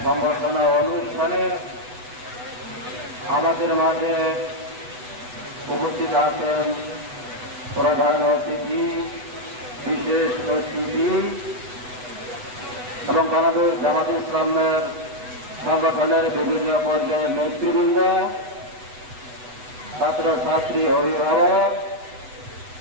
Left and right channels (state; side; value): late; left; 8.1 ms